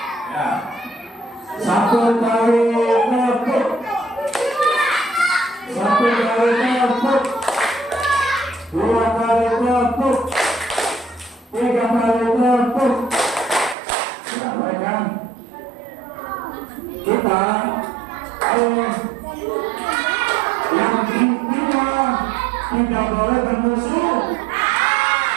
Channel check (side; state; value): left; drops out; at 13.8 s